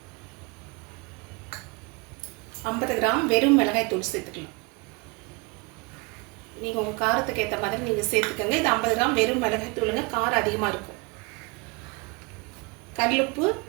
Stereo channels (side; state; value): left; quieter; 28.9 dB